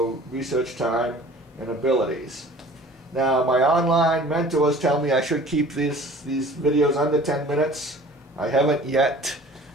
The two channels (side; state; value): both; normal; correlation 0.47